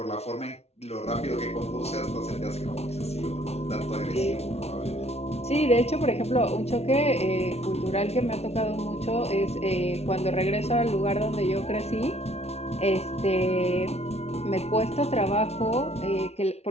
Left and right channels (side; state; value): right; late; 0.31 ms